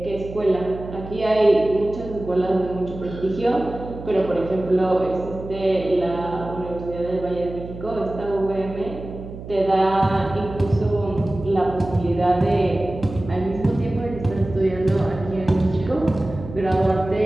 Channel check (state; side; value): noise; right; hum, 12 dB below the sound